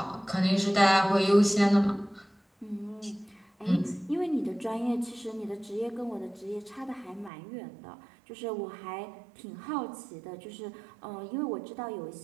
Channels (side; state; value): left; drops out; at 7.3 s